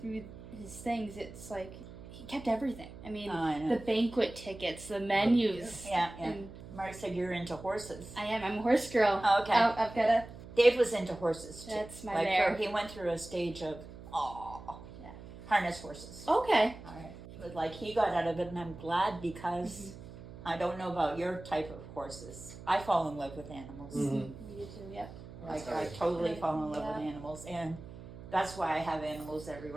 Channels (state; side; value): noise; right; hum, 15 dB below the sound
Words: his things, it's like he kept everything. I mean, I know. the banquet tickets, the menus. Yeah. And Mark said you're into horses. I am. I'm a horse girl. Oh, okay. I've got a. Dave was into horses too. That's my like mare. he went through a stage of Yeah. harness horses. Okay. All right. But like he got out of it, and I'm glad because I don't know about your type of horses. I fall in love with animals. Mhm. You too. Yep. Like I totally fall in love with animals, and that's why I have animals